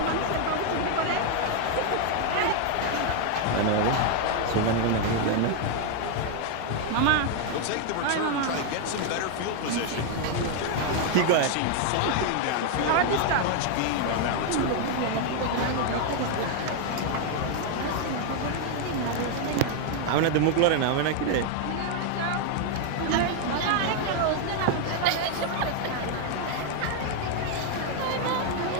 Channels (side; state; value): both; different; correlation 0.01